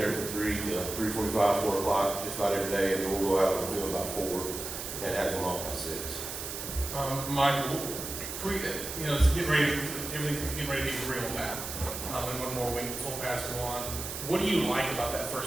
from 3 to 3:45, 4 o'clock, just about every day, and then we'll go out on the field about 4 and have them off by 6. Michael, you know, it's getting ready, everything's getting ready to be real now. And one more week, full pads go on. What do you like about that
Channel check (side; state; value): right; noise; hiss, 7 dB below the sound